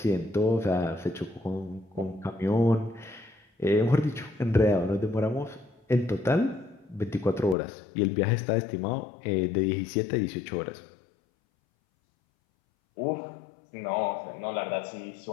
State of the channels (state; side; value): drops out; right; at 7.6 s